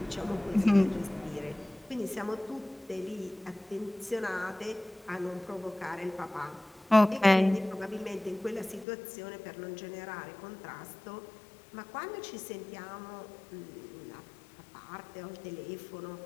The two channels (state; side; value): drops out; right; at 8.8 s